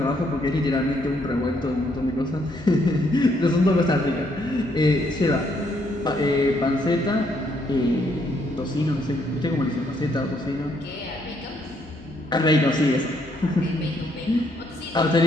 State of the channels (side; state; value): both; normal; correlation 0.71